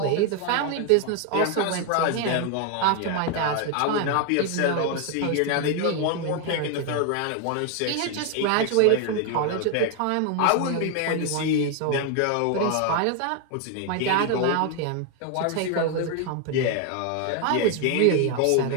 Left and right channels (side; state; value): both; different; correlation 0.01